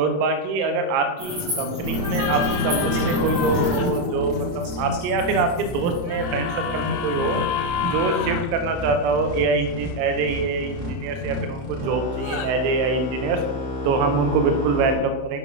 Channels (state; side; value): late; left; 22 ms